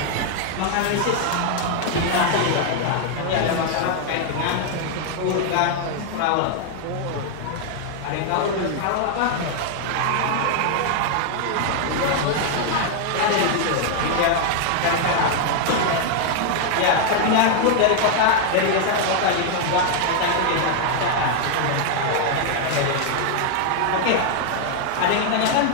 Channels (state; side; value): different; both; correlation 0.00